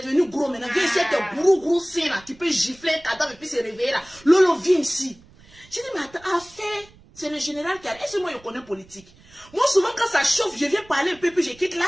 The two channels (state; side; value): noise; right; rumble, 26 dB below the sound